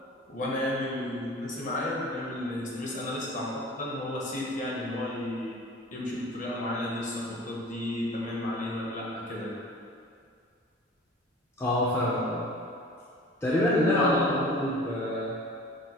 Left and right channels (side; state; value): both; normal; correlation 0.43